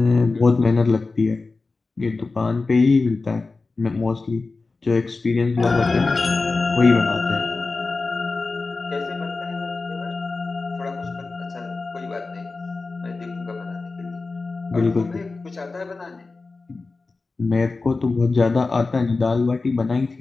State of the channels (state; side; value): quieter; right; 3.8 dB